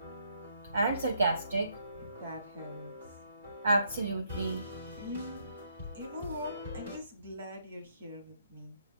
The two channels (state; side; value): inverted; both; correlation -0.72